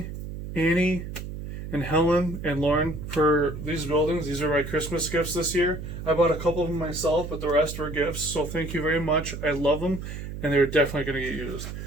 Annie, and Helen and Lauren for these buildings. These are my Christmas gifts this year. I bought a couple of them myself, but the rest were gifts. So thank you very much. I love them, and they're definitely going to get used.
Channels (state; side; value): noise; right; hum, 8 dB below the sound